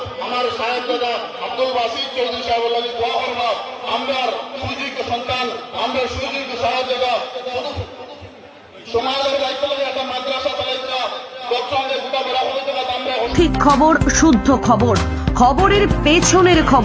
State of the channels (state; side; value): identical; both; correlation 1.00